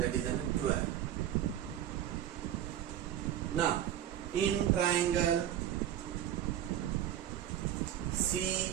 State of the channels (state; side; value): quieter; left; 11.1 dB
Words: is 12. Now in triangle